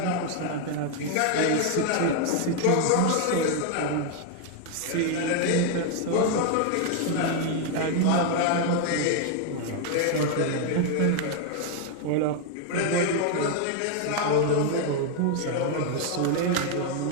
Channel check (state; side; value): different; both; correlation 0.01